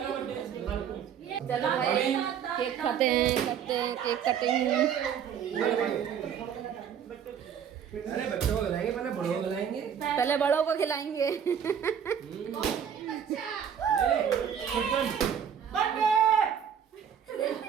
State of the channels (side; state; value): left; quieter; 8.2 dB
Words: चलो भाई, केक खाते हैं, करते हैं केक कटिंग। अरे बच्चों को खिलाएंगे, पहले बड़ों को खिलाएंगे। पहले बड़ों को खिलाएंगे।